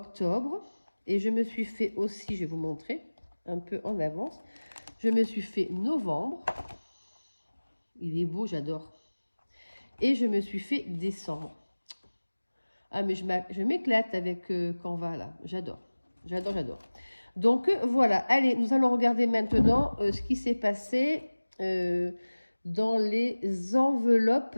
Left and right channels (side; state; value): both; inverted; correlation -1.00